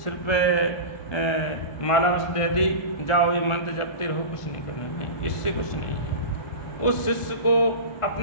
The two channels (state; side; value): late; right; 1.5 ms